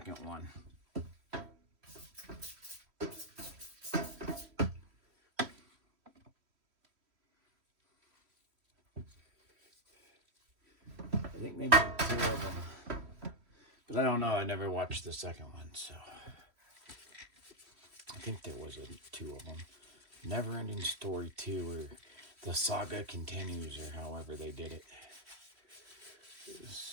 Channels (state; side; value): late; left; 3.1 ms